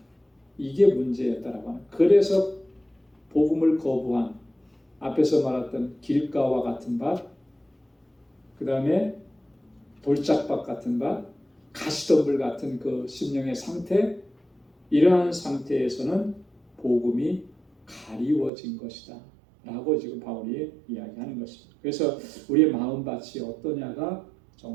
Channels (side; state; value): left; drops out; at 18.5 s